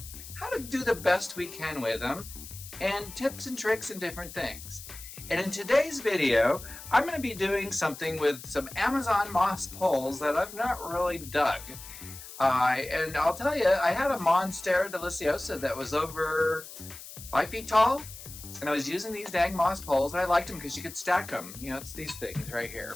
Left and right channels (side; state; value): left; noise; hiss, 14 dB below the sound